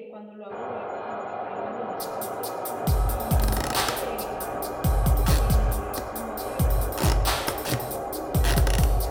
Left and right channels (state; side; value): identical; both; correlation 1.00